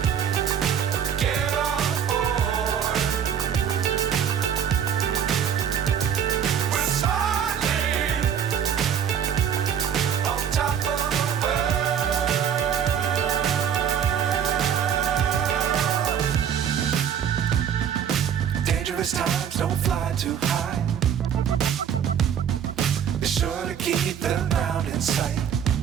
Times don't fly too high. Be sure to keep the ground in sight.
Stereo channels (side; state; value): left; quieter; 8.4 dB